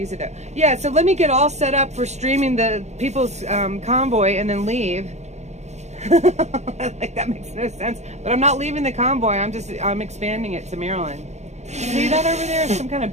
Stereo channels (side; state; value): left; late; 0.33 ms